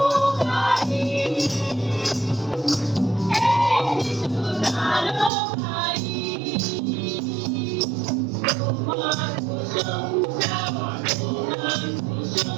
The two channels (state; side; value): drops out; left; at 5.3 s